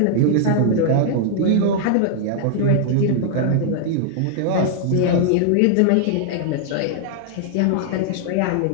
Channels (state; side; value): different; both; correlation -0.01